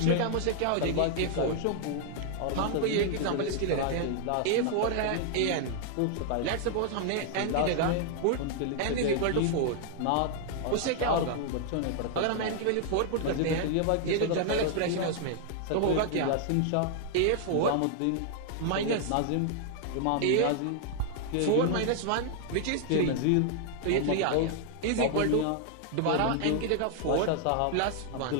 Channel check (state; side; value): different; both; correlation 0.00